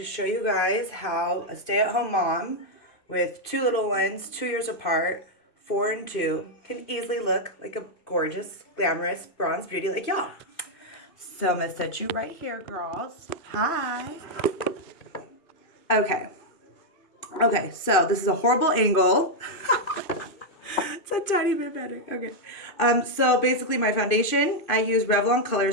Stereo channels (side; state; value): right; late; 2.6 ms